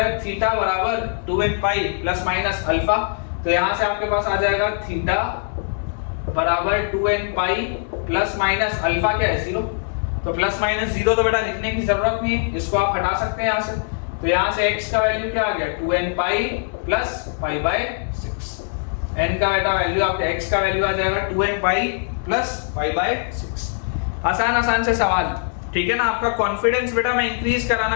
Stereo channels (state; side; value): silent; right; digital silence